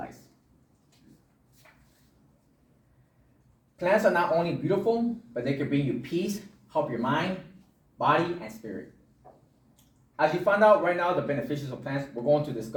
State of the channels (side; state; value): both; identical; correlation 1.00